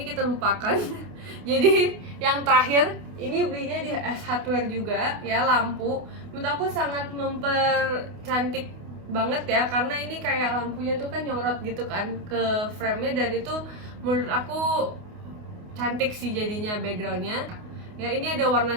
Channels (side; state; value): left; late; 28 ms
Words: kita lupakan. Jadi yang terakhir ini belinya di S Hardware juga ya, lampu. Menurut aku sangat mempercantik banget ya, karena ini kayak lampunya tuh kan nyorot gitu kan ke frame-nya, dan itu menurut aku cantik sih jadinya backgroundnya. Ya ini ada